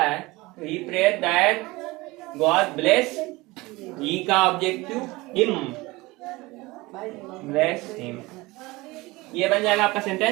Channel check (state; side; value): quieter; left; 21.7 dB